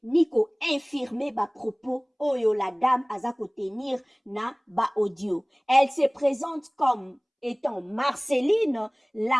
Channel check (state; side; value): identical; both; correlation 1.00